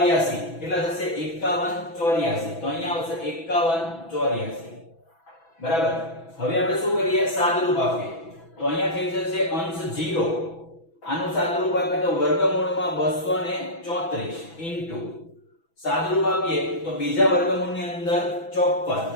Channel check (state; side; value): late; right; 6.0 ms